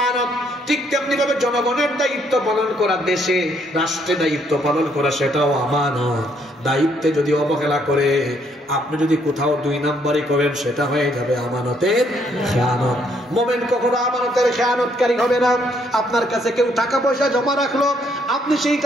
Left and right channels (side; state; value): both; normal; correlation 0.70